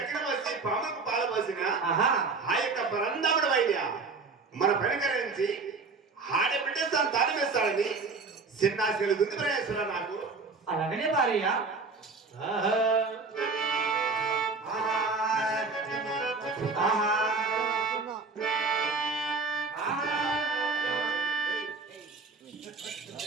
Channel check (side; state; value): left; quieter; 4.2 dB